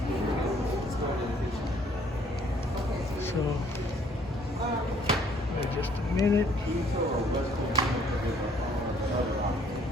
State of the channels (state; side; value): normal; both; correlation 0.62